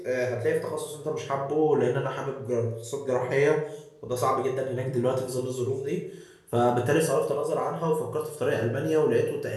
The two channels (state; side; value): identical; both; correlation 1.00